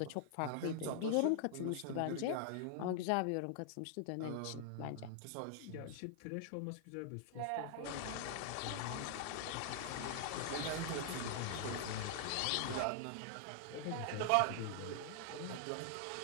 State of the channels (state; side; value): different; both; correlation -0.01